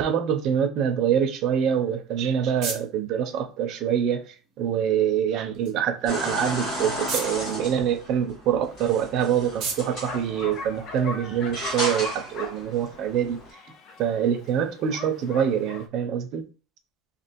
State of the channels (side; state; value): left; quieter; 7.4 dB